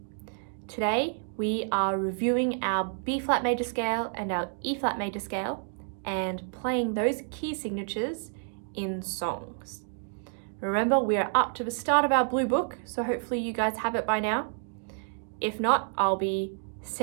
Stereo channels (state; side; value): silent; left; 58 dB below the other